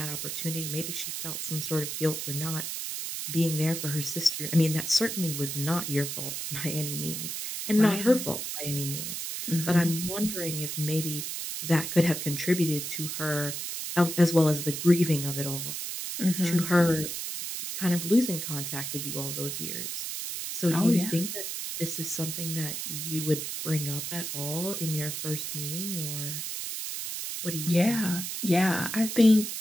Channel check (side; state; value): right; noise; hiss, 5 dB below the sound